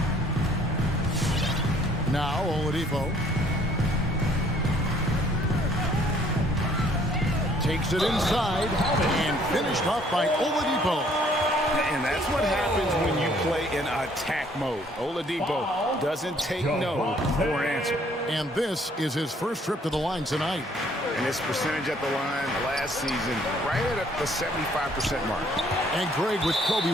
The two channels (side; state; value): both; normal; correlation 0.61